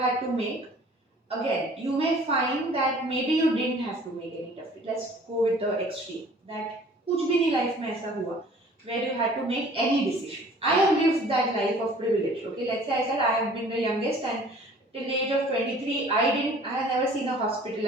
to make? Again, you may find that maybe you didn't have to make any tough. Let's go with the extreme. That कुछ भी नहीं life में ऐसा हुआ where you had to make any decision. I have lived that life of privilege. Okay, let's say I said I have been the youngest and till the age of 23, I have never seen a hospital.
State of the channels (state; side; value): normal; both; correlation 0.51